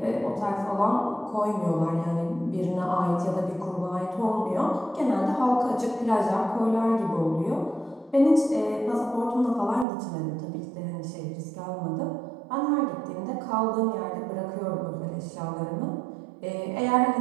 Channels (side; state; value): left; drops out; at 9.9 s